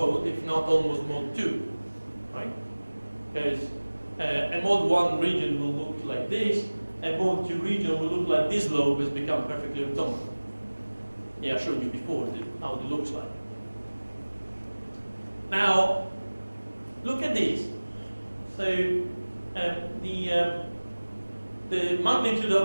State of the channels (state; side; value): inverted; both; correlation -1.00